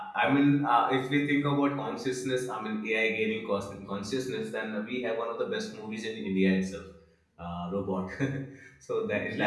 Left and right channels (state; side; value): identical; both; correlation 1.00